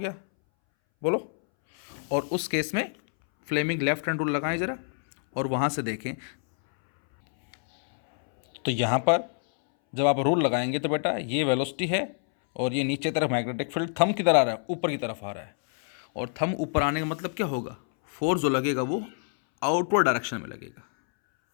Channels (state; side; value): silent; right; 60 dB below the other